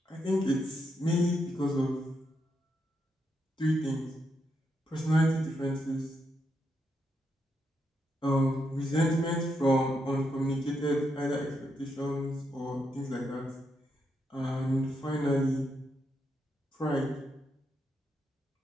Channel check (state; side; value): normal; both; correlation 0.81